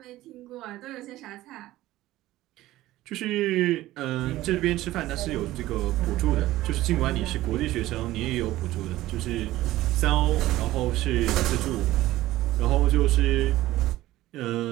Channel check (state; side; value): quieter; left; 16.1 dB